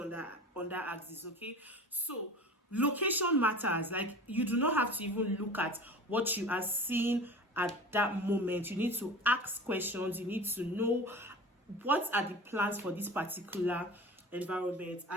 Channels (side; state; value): both; normal; correlation 0.37